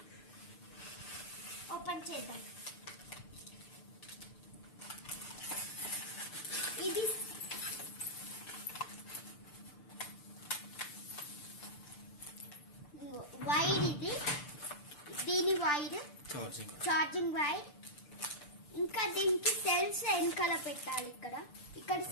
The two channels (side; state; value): right; late; 6.8 ms